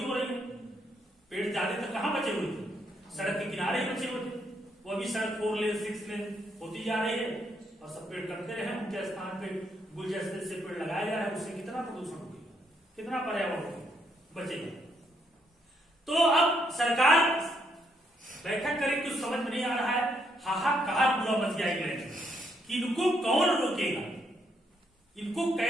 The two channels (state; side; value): normal; both; correlation 0.75